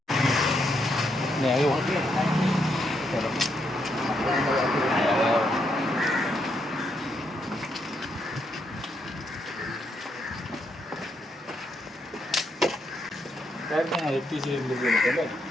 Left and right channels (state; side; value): normal; both; correlation 0.78